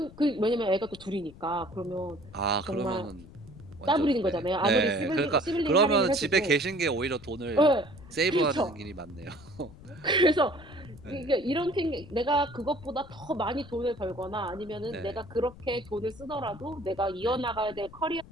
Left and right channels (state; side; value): noise; left; rumble, 19 dB below the sound